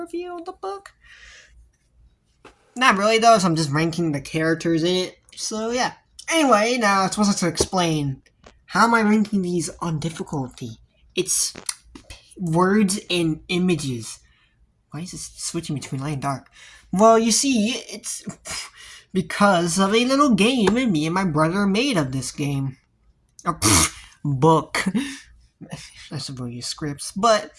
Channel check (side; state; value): both; identical; correlation 1.00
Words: of the book. Not really though, so I'm just ranking the characters in it. So yeah. Anyway, now I'm supposed to explain how am I ranking these on difficulty. It's words and images. Why is this switching between light and dark? Well, you see, it's because of a little game me and my brother made of this game. Book. I suppose you scripts, but